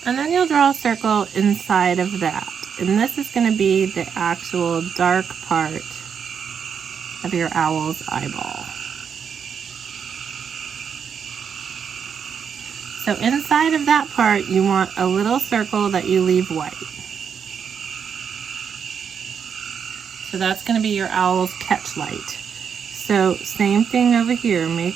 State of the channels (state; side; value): quieter; left; 7.1 dB